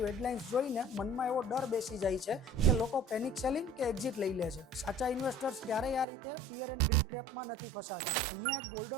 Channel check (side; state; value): left; drops out; at 6.1 s